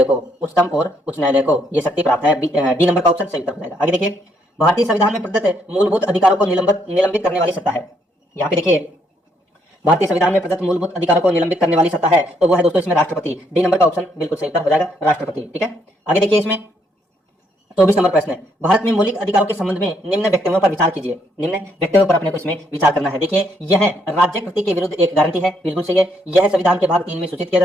को। उच्चतम और उच्च न्यायालय को ये शक्ति प्राप्त है। डी नंबर का ऑप्शन सही उत्तर हो जाएगा। आगे देखिए, भारतीय संविधान में प्रदत्त मूलभूत अधिकारों को निलंबित करने वाली सत्ता है। यहाँ पे देखिए, भारतीय संविधान में प्रदत्त मूलभूत अधिकारों को निलंबित करने वाली सत्ता है, तो वो है दोस्तों इसमें राष्ट्रपति। डी नंबर का ऑप्शन बिल्कुल सही उत्तर हो जाएगा, राष्ट्रपति। ठीक है, आगे देखिए, इसमें 24 नंबर प्रश्न है, भारत में मौलिक अधिकारों के संबंध में निम्न वक्तव्यों पर विचार कीजिए। निम्न वक्तव्यों पर अपने को इसमें विचार करना है। देखिए, यह राज्य कृति के विरुद्ध एक गारंटी है, बिल्कुल सही है। यह संविधान के भाग 3 में सूचित किया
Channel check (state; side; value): normal; both; correlation 0.72